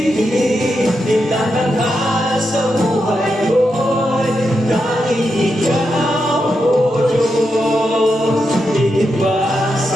itatanghal sa buhay ko'y tanging ikaw, O Diyos. Iiba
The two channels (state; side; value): normal; both; correlation 0.85